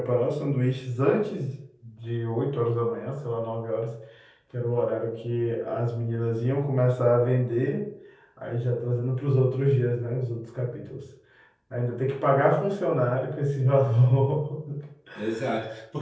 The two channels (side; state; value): both; identical; correlation 1.00